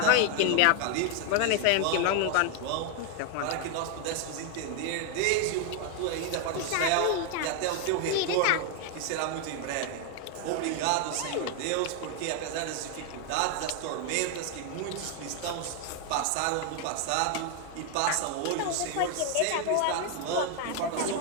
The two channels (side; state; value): both; different; correlation 0.01